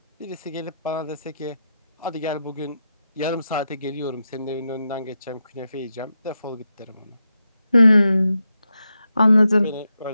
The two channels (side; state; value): both; inverted; correlation -0.86